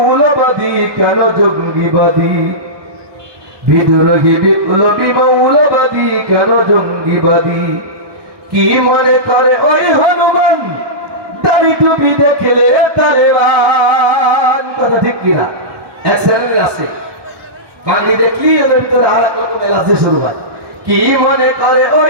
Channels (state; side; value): late; left; 1.2 ms